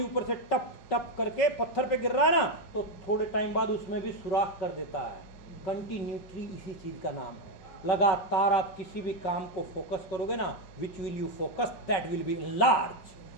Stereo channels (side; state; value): right; late; 5.4 ms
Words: ऊपर से टप टप करके पत्थर पे गिर रहा है ना, तो थोड़े टाइम बाद उसमें भी सुराख कर देता है। कंटिन्यूटी इसी चीज का नाम है। लगातार आप किसी भी काम को फोकस करोगे ना, which will you focus that will be large.